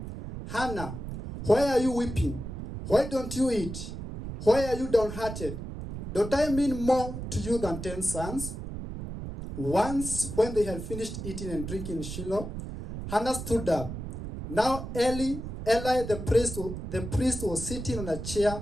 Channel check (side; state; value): right; noise; rumble, 8 dB below the sound